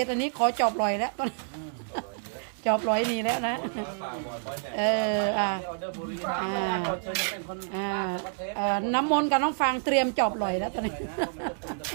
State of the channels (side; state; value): left; silent; digital silence